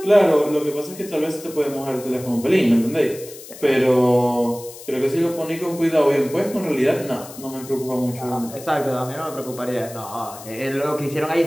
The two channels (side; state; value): left; noise; hiss, 16 dB below the sound